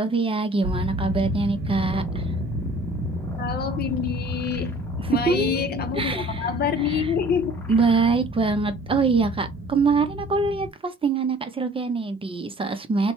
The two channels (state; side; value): normal; both; correlation 0.51